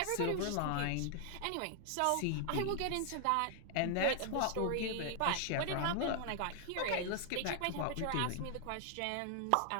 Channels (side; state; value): both; different; correlation 0.00